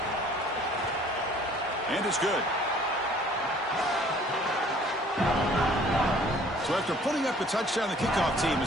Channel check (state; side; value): normal; both; correlation 0.55